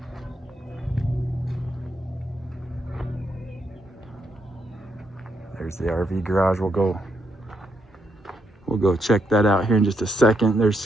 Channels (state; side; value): normal; both; correlation 0.78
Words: There's the RV garage. We'll go check that out here in just a second.